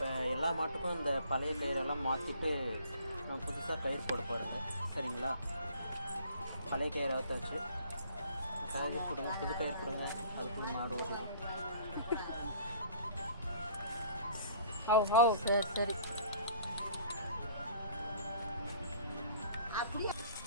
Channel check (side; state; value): both; inverted; correlation -0.53